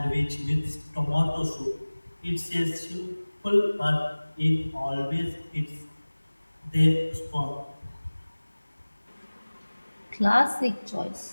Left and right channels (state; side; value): inverted; both; correlation -1.00